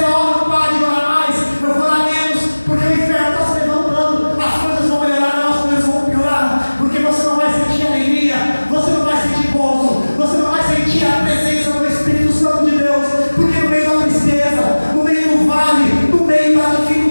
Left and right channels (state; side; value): inverted; both; correlation -1.00